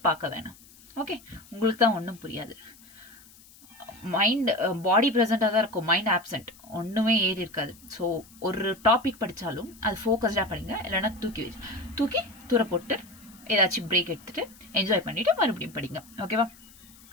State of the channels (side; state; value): left; noise; hiss, 24 dB below the sound